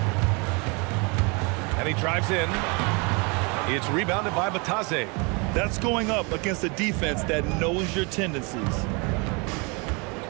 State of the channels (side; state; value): left; quieter; 30.9 dB